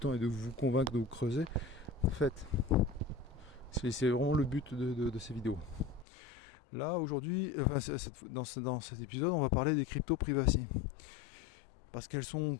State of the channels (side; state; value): right; drops out; at 6.1 s